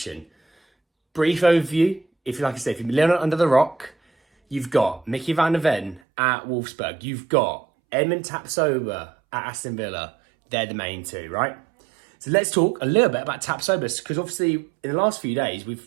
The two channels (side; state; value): left; drops out; at 6.0 s